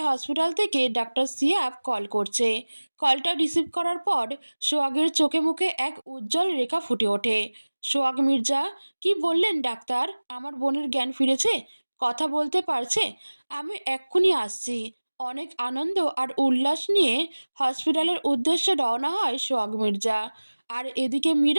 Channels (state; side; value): inverted; both; correlation -1.00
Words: হসপিটাল থেকে ডাক্তার সিয়াব কল করছে। কলটা রিসিভ করার পর সোহাগের চোখে মুখে এক উজ্জ্বল রেখা ফুটে ওঠে। সোহাগ মির্জা, কি বললেন ডাক্তার? আমার বোনের জ্ঞান ফিরেছে? কথা বলতে পারছে? আমি এক্ষুনি আসছি। অনেক আনন্দ আর উল্লাস নিয়ে হসপিটালের উদ্দেশ্যে রওনা হয় সোহাগ মির্জা। আর এদিকে